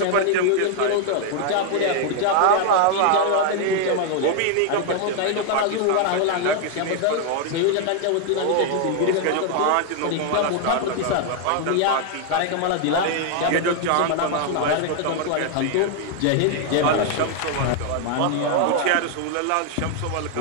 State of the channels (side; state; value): both; different; correlation 0.00